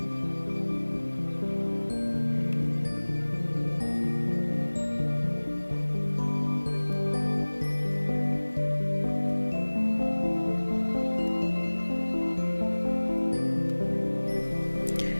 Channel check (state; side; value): inverted; both; correlation -1.00